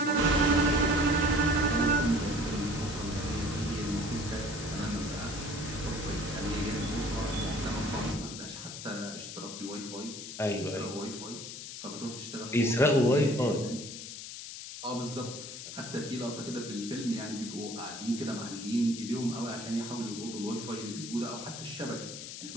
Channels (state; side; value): noise; left; hiss, 9 dB below the sound